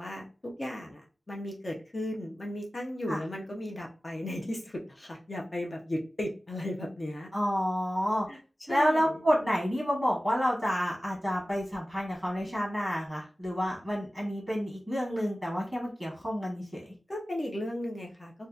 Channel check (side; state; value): both; normal; correlation 0.96